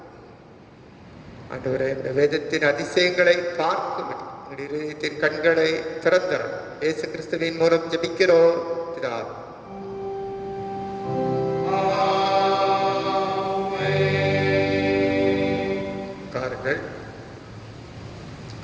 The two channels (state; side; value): identical; both; correlation 1.00